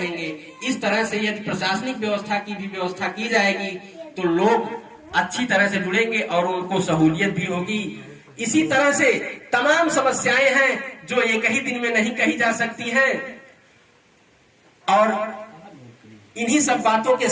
इस तरह से यदि प्रशासनिक व्यवस्था की भी व्यवस्था की जाएगी तो लोग अच्छी तरह से जुड़ेंगे और उनको सहूलियत भी होगी। इसी तरह से तमाम समस्याएं हैं जो एक ही दिन में नहीं कही जा सकती हैं। और इन्हीं सब बातों के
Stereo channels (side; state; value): both; identical; correlation 1.00